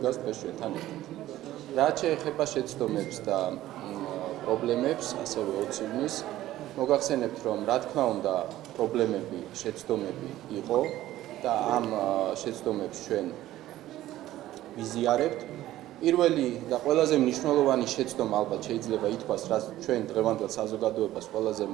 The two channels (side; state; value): left; quieter; 14.5 dB